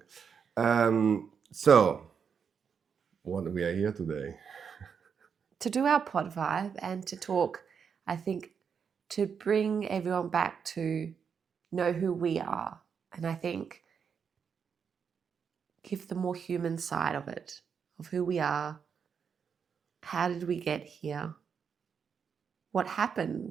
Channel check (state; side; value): quieter; left; 6.7 dB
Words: So, what we are here today? To do our pod vibe and to talk, I think, to bring everyone back to know who we are. And I think give the more human side of it, of who we are. How did we get here? What